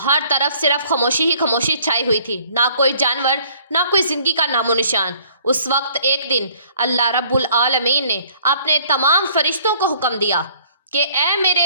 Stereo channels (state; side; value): inverted; both; correlation -0.57